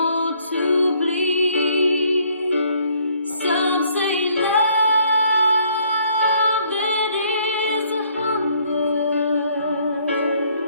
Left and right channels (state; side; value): inverted; both; correlation -0.64